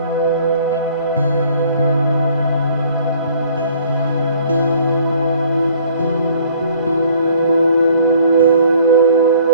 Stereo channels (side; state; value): both; inverted; correlation -0.57